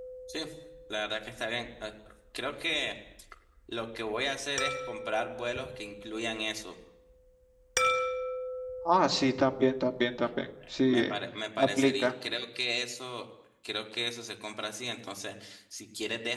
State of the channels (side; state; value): both; identical; correlation 1.00